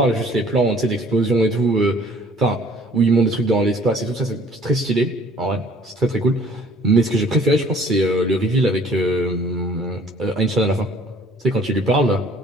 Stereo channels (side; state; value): both; normal; correlation 0.54